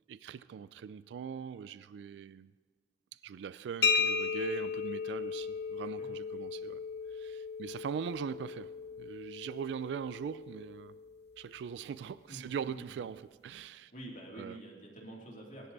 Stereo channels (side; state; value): both; normal; correlation 0.03